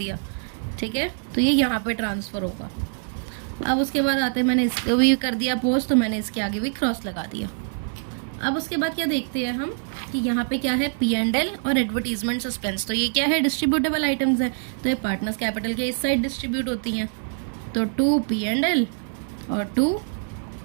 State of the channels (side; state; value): left; silent; 62 dB below the other